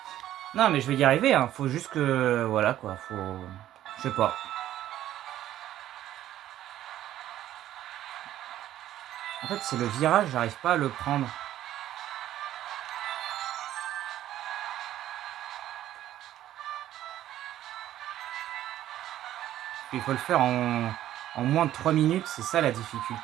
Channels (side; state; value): left; quieter; 12.8 dB